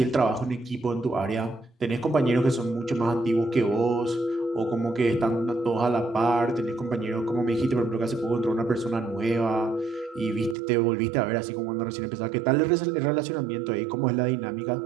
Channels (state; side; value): drops out; left; at 10.6 s